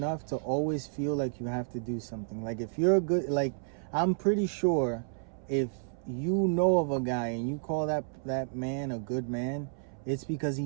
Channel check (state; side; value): silent; left; 57 dB below the other